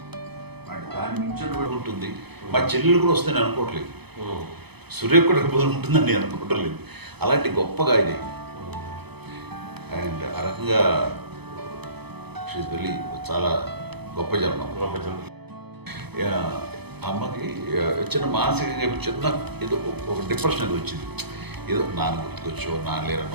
అంటే దాని మించిన ఉంటుంది. మా చెల్లెలు కూడా వస్తుందని అనుకోవట్లేదు, సూర్య కూడా ఉంటుందని నేను అనుకోవట్లేదు. అలాంటి గొప్పగా ఇది అండ్ ఆ రకంగా షీఈ్ వెరీ చాలా గొప్ప జన్మ. అమ్మకి చిన్న మానసికంగా చిన్న ఏదో ఒక డిప్రెషన్ అది వచ్చింది. ఏదో నాన్న గుర్తుకొచ్చో, నాన్న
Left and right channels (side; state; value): left; late; 0.98 ms